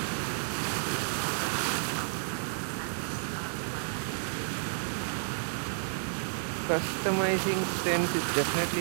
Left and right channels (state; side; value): silent; left; digital silence